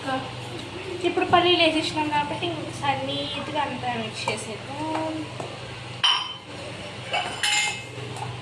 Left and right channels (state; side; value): identical; both; correlation 1.00